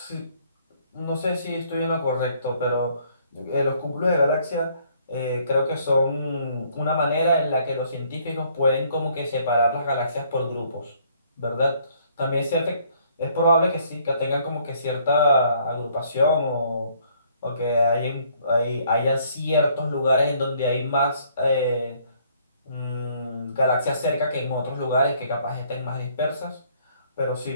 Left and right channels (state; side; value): inverted; both; correlation -0.64